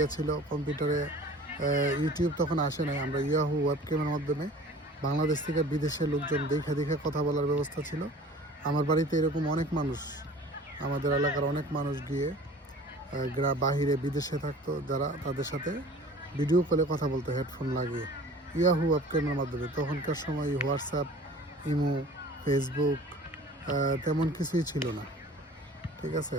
ছিল কম্পিউটারে ইউটিউব তখন আসে নাই, আমরা ইয়াহু ওয়েবক্যামের মাধ্যমে বাংলাদেশ থেকে বিদেশের লোকজন দেখে কথা বলার ব্যবস্থা ছিল। আমার বাড়িতে এরকম অনেক মানুষ, আমাদের এলাকার অনেক মানুষ গিয়ে বাহিরে বিদেশে থাকতো যারা, তাদের সাথে ভিডিও কলে কথা বলতো হেডফোন লাগিয়ে ইয়াহু ওয়েবক্যামের মাধ্যমে। তখনকার সময় হোয়াটসঅ্যাপ, ইমো, ফেসবুক তেমন কিছুই ছিল না। ঠিক আছে,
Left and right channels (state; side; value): normal; both; correlation 0.45